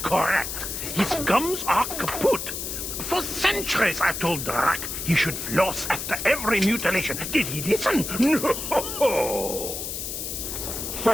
correct. His gums are kaput. For centuries I've told Drac he should floss after every mutilation. Did he listen? No.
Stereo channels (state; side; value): noise; left; hiss, 5 dB below the sound